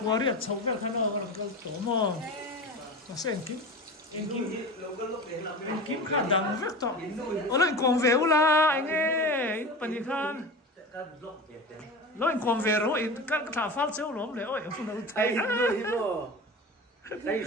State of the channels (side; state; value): both; normal; correlation 0.30